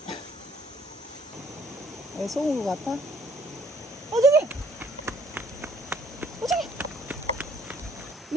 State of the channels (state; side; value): normal; both; correlation 0.61